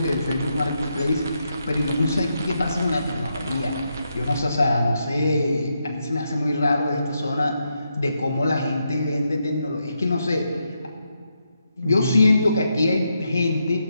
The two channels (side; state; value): both; inverted; correlation -0.82